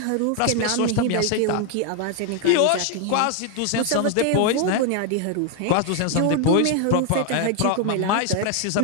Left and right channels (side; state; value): both; different; correlation 0.01